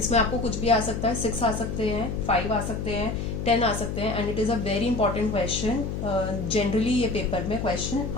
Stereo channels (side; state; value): left; noise; hum, 4 dB below the sound